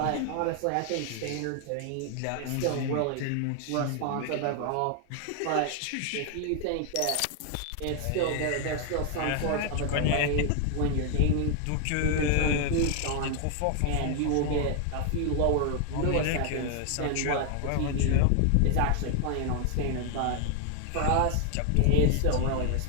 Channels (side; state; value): both; different; correlation 0.00